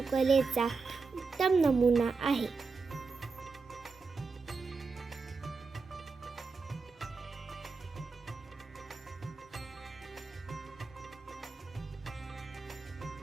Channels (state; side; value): quieter; left; 4.5 dB